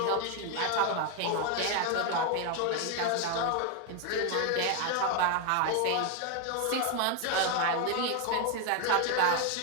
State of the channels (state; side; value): different; both; correlation 0.01